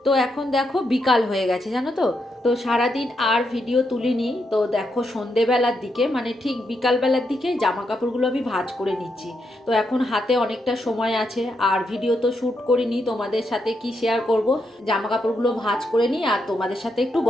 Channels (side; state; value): both; normal; correlation 0.81